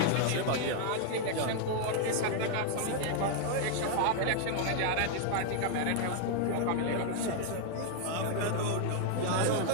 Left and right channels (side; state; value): both; different; correlation 0.00